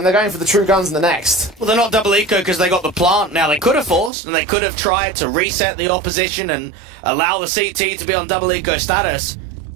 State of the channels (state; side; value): drops out; left; at 4.1 s